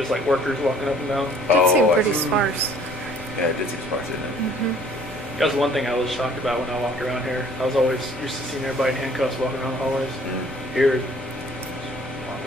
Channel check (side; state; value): both; normal; correlation 0.55